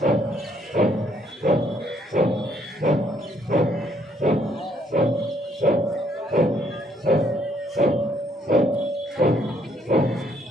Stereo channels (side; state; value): both; normal; correlation 0.68